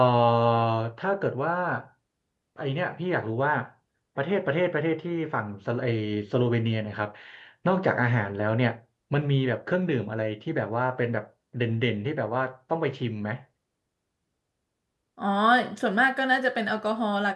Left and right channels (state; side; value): identical; both; correlation 1.00